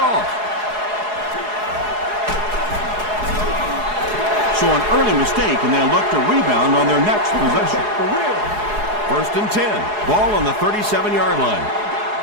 So an early mistake, and they'll look to rebound on their next possession. First and 10. Ball on the 37-yard line.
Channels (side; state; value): left; late; 4.8 ms